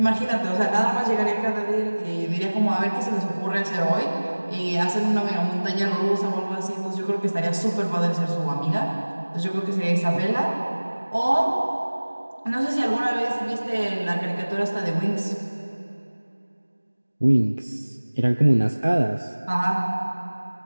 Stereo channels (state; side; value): inverted; both; correlation -1.00